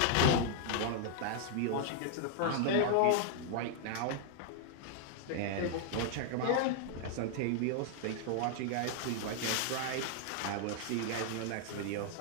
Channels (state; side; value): different; both; correlation 0.00